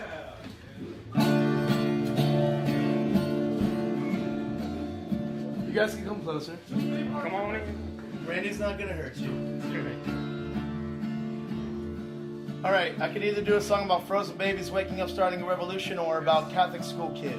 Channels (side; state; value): both; identical; correlation 1.00